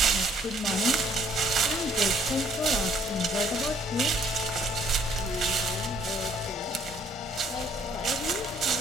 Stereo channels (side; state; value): both; normal; correlation 0.63